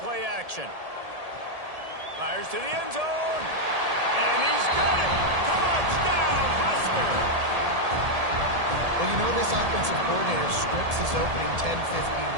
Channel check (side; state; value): left; late; 1.7 ms